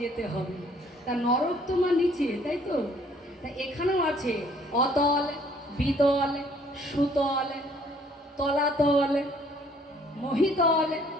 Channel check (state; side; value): normal; both; correlation 0.60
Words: যেতে হবে। তা নরক তো মা নিচে, তাই তো? তা এখানেও আছে অতল, বিতল, সুতল, তলাতল, মহিতল,